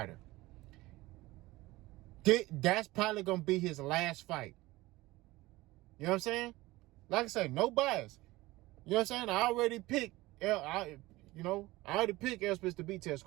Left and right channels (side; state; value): left; quieter; 19.3 dB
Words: That's probably going to be his last fight. You know what I'm saying? Like I said, no bias. You know what I'm saying? I already picked I already picked Errol Spence to beat Terence